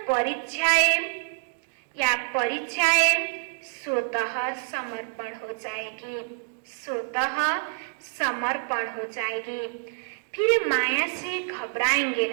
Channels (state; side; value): silent; left; digital silence